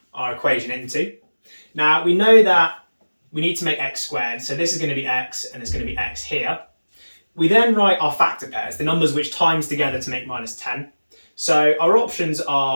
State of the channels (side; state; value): both; inverted; correlation -1.00